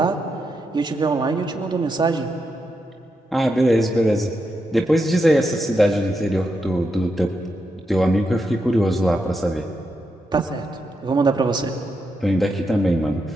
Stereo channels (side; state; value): both; normal; correlation 0.84